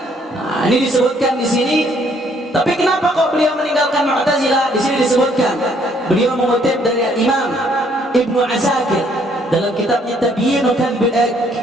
Nah, ini disebutkan di sini. Tapi kenapa kok beliau meninggalkan Mu'tazilah? Di sini disebutkan beliau mengutip dari Imam Ibnu Asakir dalam kitabnya Tabyin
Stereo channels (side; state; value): both; normal; correlation 0.66